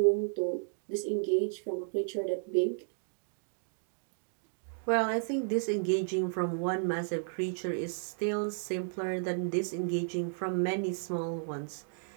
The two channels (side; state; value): left; silent; digital silence